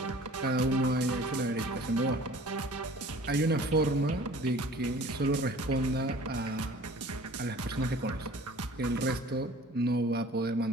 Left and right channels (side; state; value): both; normal; correlation 0.47